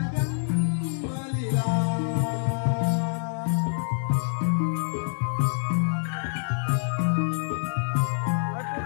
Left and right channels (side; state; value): right; silent; 61 dB below the other